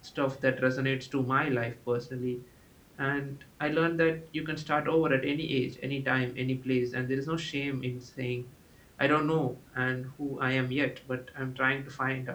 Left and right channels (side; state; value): both; identical; correlation 1.00